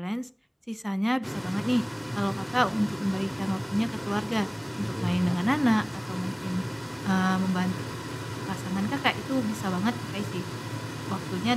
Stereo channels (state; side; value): identical; both; correlation 1.00